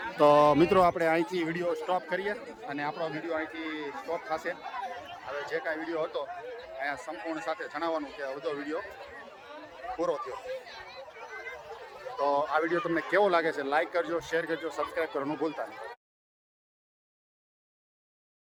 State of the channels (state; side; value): identical; both; correlation 1.00